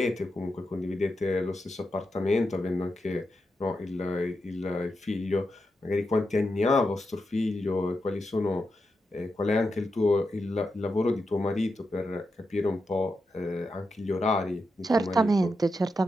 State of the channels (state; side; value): normal; both; correlation 0.87